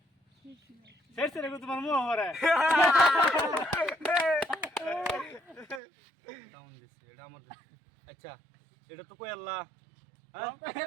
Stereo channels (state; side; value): drops out; left; at 5.8 s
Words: শেষ রে তোমার মুহ হরে ডাউন দিছে এটা আমার আচ্ছা এটা তো কই আল্লাহ হ্যাঁ